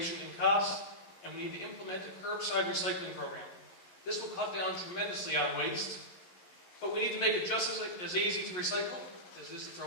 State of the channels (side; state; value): right; late; 11 ms